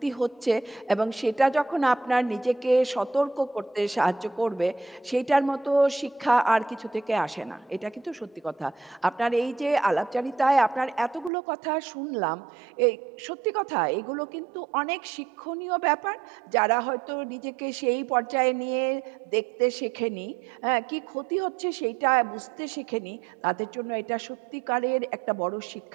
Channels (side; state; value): left; drops out; at 11.3 s